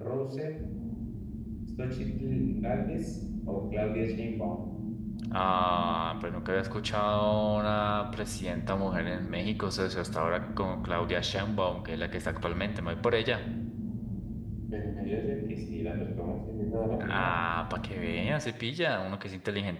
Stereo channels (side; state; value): both; identical; correlation 1.00